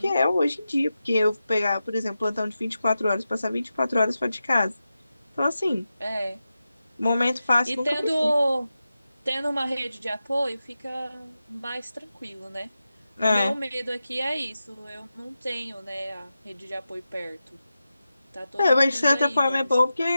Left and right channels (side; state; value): both; inverted; correlation -0.92